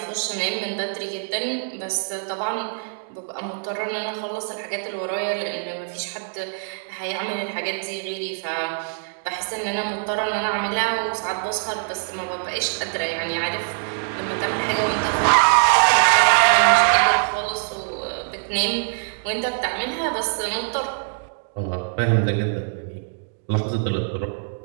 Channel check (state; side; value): silent; left; digital silence